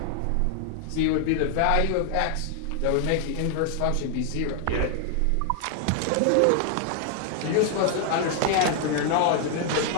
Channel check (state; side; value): different; both; correlation 0.00